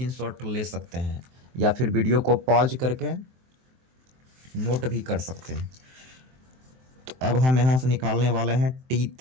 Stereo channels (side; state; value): left; late; 23 ms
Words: ले सकते हैं या फिर वीडियो को पॉज करके नोट भी कर सकते हैं। तो अब हम यहाँ से निकालने वाले हैं